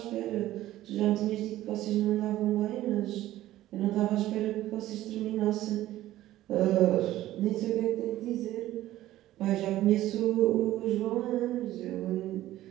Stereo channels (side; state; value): left; quieter; 14.7 dB